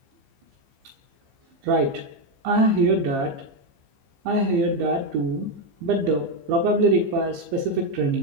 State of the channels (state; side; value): late; left; 15 ms